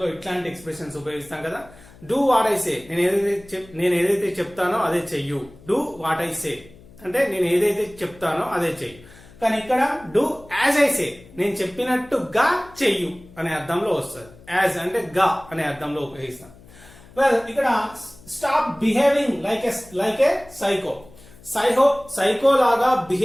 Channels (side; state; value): left; noise; hum, 23 dB below the sound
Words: లో ఇట్లాంటి ఎక్స్ప్రెషన్స్ ఉపయోగిస్తాం కదా. డూ వాట్ ఐ సే నేను ఏదైతే చెప్తానో అదే చెయ్యు. డూ వాట్ ఐ సే అంటే నేను ఏదైతే చెప్తానో అదే చెయ్యి. కానీ ఇక్కడ డూ యాజ్ ఐ సే నేను చెప్పినట్టుగా చెయ్యు అనే అర్థంలో వస్తుంది. యాజ్ అంటే గా అనే అర్థంలో ఉపయోగిస్తాం. వెల్ ఇక్కడ stop behaving like a psycho psycho లాగా